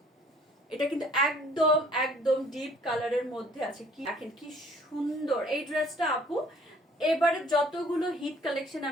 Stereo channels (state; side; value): normal; both; correlation 0.57